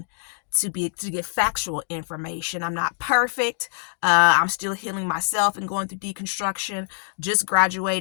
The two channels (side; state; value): right; silent; digital silence